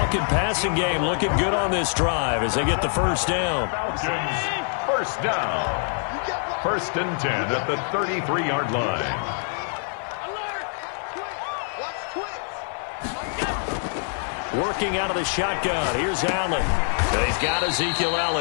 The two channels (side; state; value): right; silent; 55 dB below the other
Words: passing game looking good on this drive as they get the first down. First down. 1st and 10 at the 33-yard line. Working out of the shotgun. Here's Allen. And he's got Ezekiel